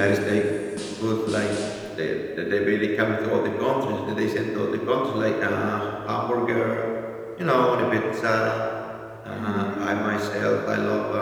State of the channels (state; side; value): identical; both; correlation 1.00